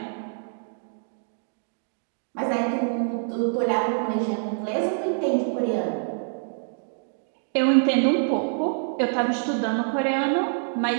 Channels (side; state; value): left; silent; digital silence